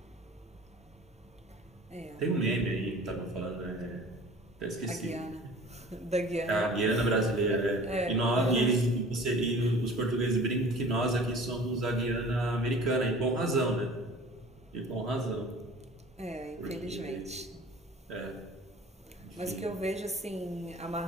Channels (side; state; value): both; normal; correlation 0.45